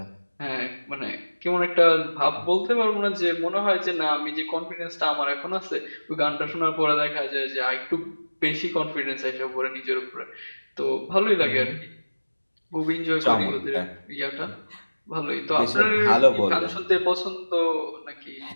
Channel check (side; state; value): both; inverted; correlation -1.00